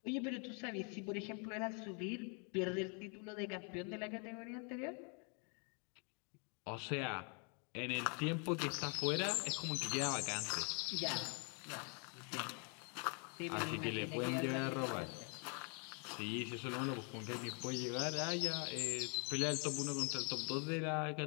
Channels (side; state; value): right; quieter; 37.7 dB